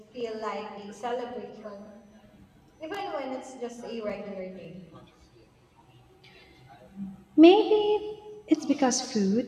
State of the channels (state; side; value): identical; both; correlation 1.00